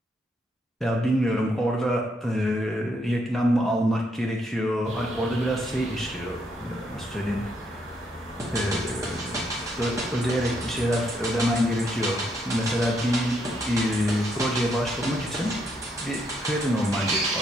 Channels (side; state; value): both; normal; correlation 0.75